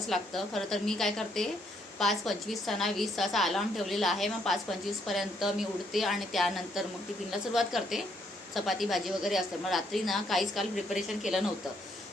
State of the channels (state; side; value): normal; both; correlation 0.71